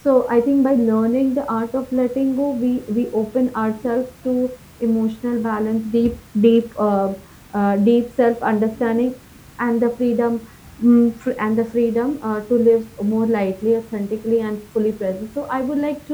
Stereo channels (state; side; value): identical; both; correlation 1.00